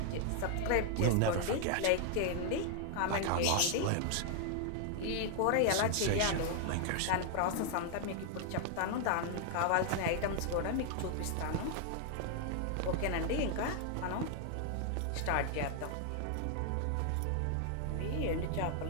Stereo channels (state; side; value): different; both; correlation 0.00